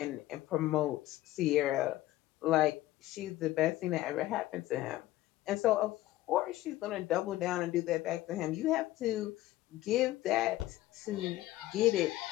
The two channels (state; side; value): quieter; right; 15.9 dB